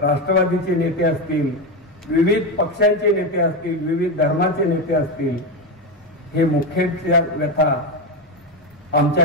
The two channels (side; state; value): both; normal; correlation 0.13